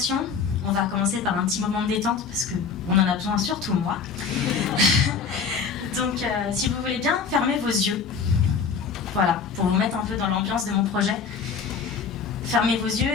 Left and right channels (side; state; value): right; quieter; 5.7 dB